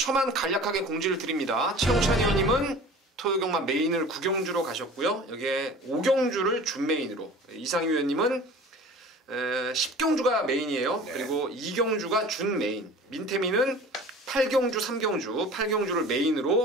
간략하게 공지를 드립니다. 최영찬 의원님은 토요경마 메인을 9경주로 가셨고요. 여기에 5경주를 준메인으로, 이상유 의원님은 10경주가 메인이에요. 그리고 2경주가 준메인, 민태민은 8경주, 3경주, 8경주를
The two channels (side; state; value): both; normal; correlation 0.41